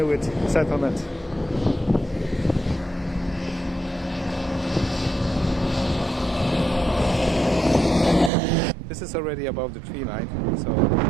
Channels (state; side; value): drops out; left; at 8.3 s